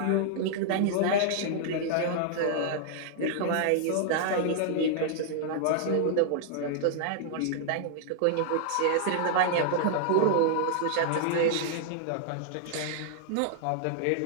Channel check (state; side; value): different; both; correlation -0.01